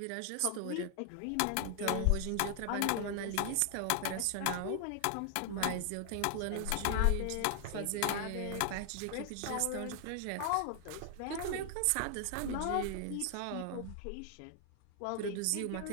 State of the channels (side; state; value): both; different; correlation 0.00